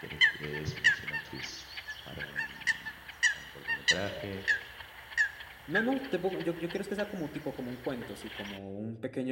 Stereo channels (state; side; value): identical; both; correlation 1.00